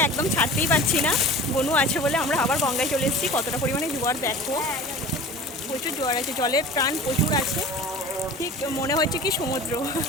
একদম ছাড়তেই পারছি না। বনু আছে বলে আমরা আবার গঙ্গায় চলে এসেছি। কতটা পরিমাণে জোয়ার দেখো, প্রচুর জোয়ার আছে, জলের প্রাণ প্রচুর আছে। ঠিক মনে হচ্ছে কি সমুদ্র।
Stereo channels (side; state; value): both; normal; correlation 0.39